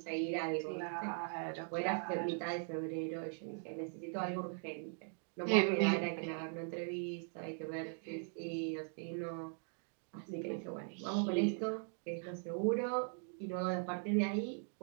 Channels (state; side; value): silent; left; 51 dB below the other